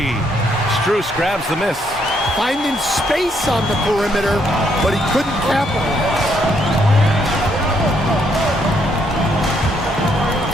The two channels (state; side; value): normal; both; correlation 0.72